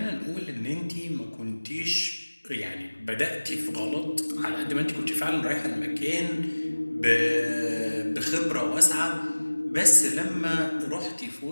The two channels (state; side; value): inverted; both; correlation -1.00